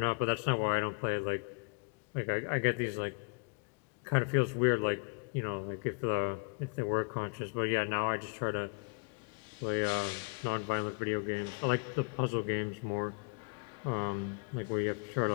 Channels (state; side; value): quieter; right; 34.9 dB